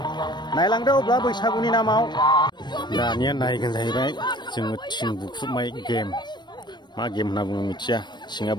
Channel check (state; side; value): late; right; 0.22 ms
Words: नायलांदो अब्ला बैसागुनि नामाव दानिया नायगोन जाहैबाय जोङो थिं बुख्रुबनाय गेम मा गेम होनना बुङो मिथिया थिंआ